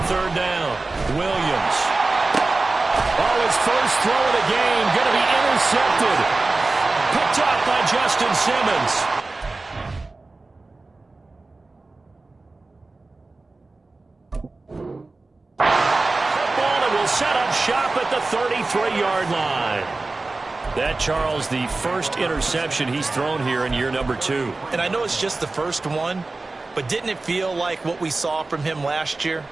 down, Williams. Oh, his first throw of the game, going to be intercepted. Picked off by Justin Simmons. Football, and will set up shop at the 33-yard line. That, Charles, the first interception he's thrown here in year number 2. And I know it's just the first one, but didn't it feel like what we saw from him last year,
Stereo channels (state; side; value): quieter; left; 3.4 dB